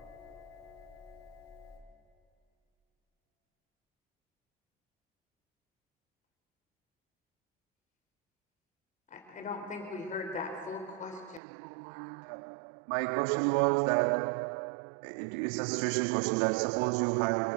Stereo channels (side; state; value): left; drops out; at 11.4 s